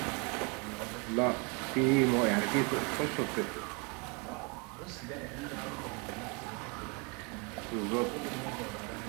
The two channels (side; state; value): left; quieter; 31.4 dB